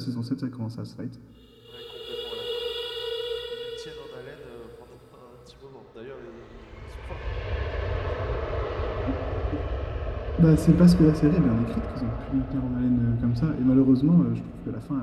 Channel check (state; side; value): identical; both; correlation 1.00